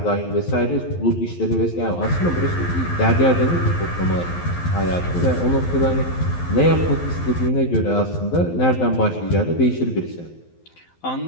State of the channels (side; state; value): right; late; 12 ms